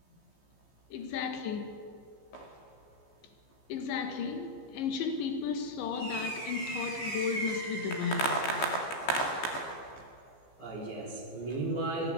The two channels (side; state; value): right; late; 15 ms